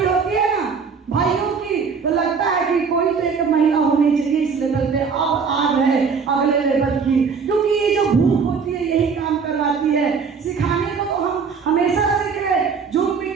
होती है ना भाइयों की, तो लगता है कि कोई तो एक महिला होनी चाहिए इस लेवल पे। अब आ गए अगले लेवल की, क्योंकि ये जो भूख होती है यही काम करवाती है। सिखाने को तो हम हमेशा सीख रहे, zoom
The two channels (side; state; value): left; quieter; 5.6 dB